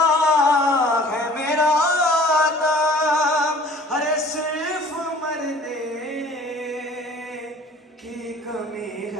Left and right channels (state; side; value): normal; both; correlation 0.50